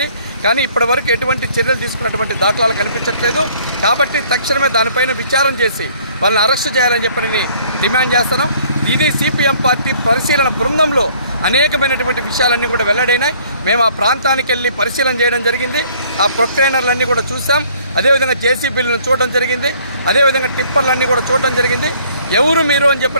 కానీ ఇప్పటి వరకు ఎటువంటి చర్యలు తీసుకున్నటువంటి దాఖలాలు కనిపించట్లేదు. కాబట్టి తక్షణమే దానిపైన విచారం చేసి వాళ్ళని అరెస్టు చేయాలని చెప్పి డిమాండ్ చేస్తున్నాం. ఇది సిపిఎం పార్టీ పరిశీలన బృందంలో అనేకమైనటువంటి విషయాలన్నీ కూడా వెల్లడైనాయి. మేము ఆ ప్రాంతానికి వెళ్ళి పరిశీలన చేయడం జరిగింది. ఆ ప్రొక్లైనర్లన్నీ కూడా చూసాం. అదేవిధంగా జేసీబీలను చూడడం జరిగింది. అదేవిధంగా టిప్పర్లన్నీ కూడా చూడడం జరిగింది. ఎవరు మీరు అని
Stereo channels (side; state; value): both; inverted; correlation -0.59